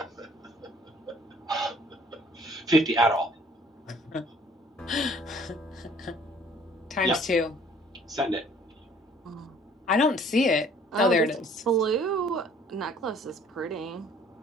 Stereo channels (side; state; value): both; normal; correlation 0.56